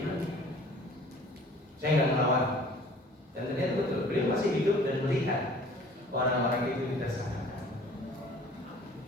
Saya nggak melawan. Dan ternyata betul, beliau masih hidup dan melihat orang-orang itu ditersangkakan.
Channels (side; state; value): both; normal; correlation 0.50